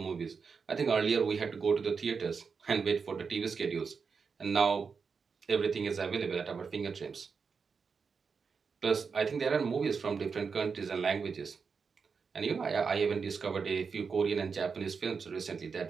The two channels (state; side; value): quieter; left; 5.5 dB